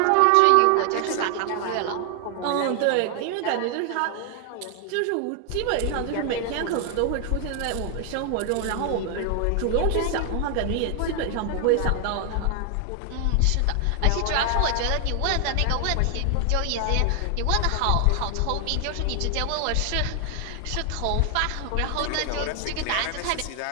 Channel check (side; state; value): both; different; correlation 0.00